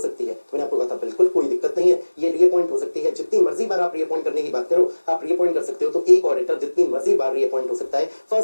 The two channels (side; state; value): both; inverted; correlation -1.00